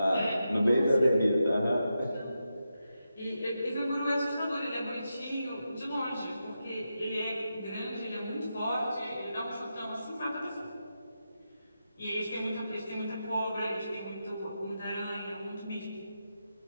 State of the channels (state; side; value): inverted; both; correlation -0.88